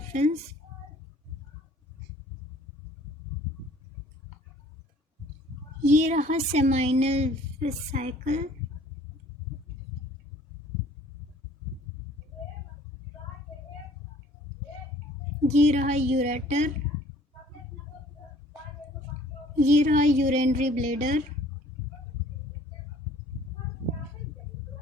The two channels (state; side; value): normal; both; correlation 0.54